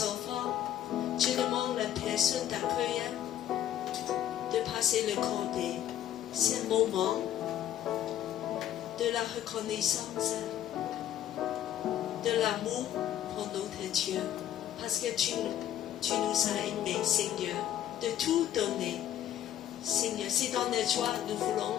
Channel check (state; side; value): quieter; right; 11.4 dB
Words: enfants. Je demande à la personne d'accueil de passer le cordé. C'est un moment de la reconnaissance, de l'amour pour notre Dieu. Parce que tu nous as aimés, Seigneur, de tout donner. Seigneur, c'est dans la joie nous voulons